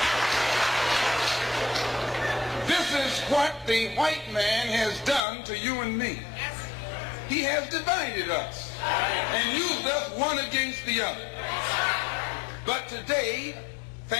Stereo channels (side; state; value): right; drops out; at 5.2 s